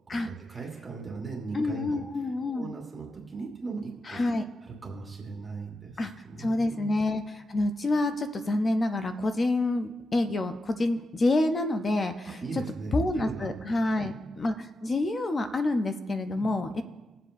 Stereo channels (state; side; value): normal; both; correlation 0.88